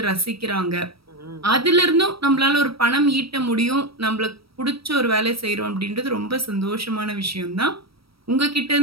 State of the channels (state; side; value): late; left; 0.75 ms